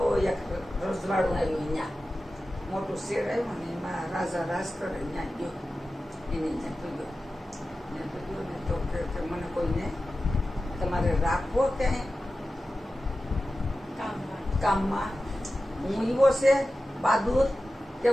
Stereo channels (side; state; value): both; normal; correlation 0.94